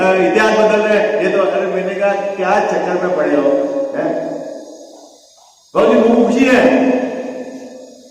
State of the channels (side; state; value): both; identical; correlation 1.00